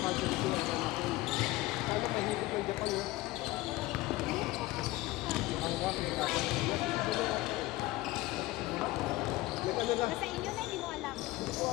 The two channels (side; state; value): right; quieter; 18.6 dB